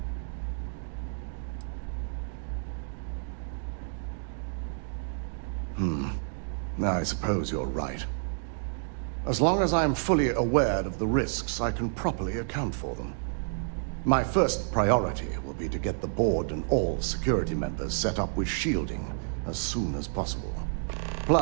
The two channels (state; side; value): silent; left; digital silence